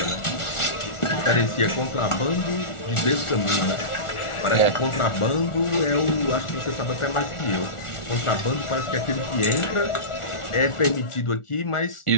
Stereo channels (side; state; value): right; late; 1.4 ms